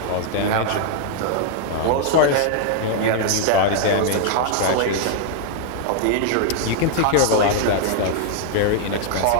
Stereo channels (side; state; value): both; different; correlation 0.00